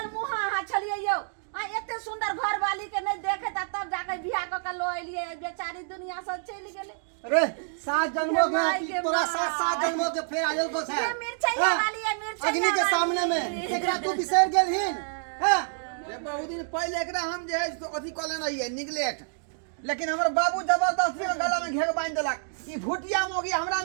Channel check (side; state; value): left; silent; digital silence